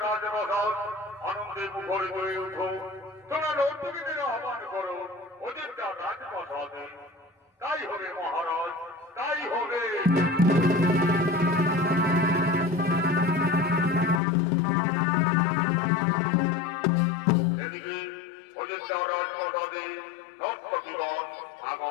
রাজপ্রাসাদ আনন্দে মুখরিত হয়ে উঠো। তোমরা নর্তকীদের আহ্বান করো অযোধ্যা রাজপ্রাসাদে। তাই হবে মহারাজ, তাই হবে। এদিকে অযোধ্যা রাজপ্রাসাদে নর্তকীগণ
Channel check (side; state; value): right; drops out; at 14.2 s